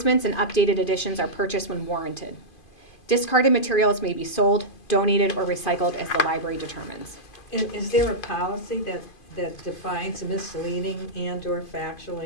and updated editions are purchased when warranted. Discarded materials may be sold, donated, or recycled as the library determines. Is there a policy that defines misleading and/or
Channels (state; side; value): late; right; 2.5 ms